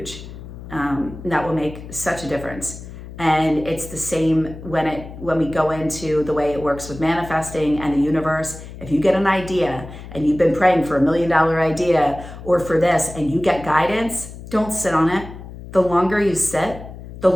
That will make such a difference. And it's the same when we go into the way it works with manifesting and the universe. If you get an idea and you've been praying for $1 million idea or for this and you get guidance, don't sit on it. The longer you sit, the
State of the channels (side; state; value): left; noise; hum, 13 dB below the sound